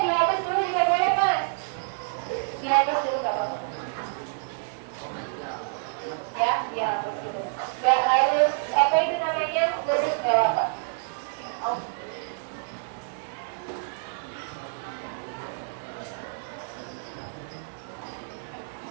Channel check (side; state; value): left; silent; 59 dB below the other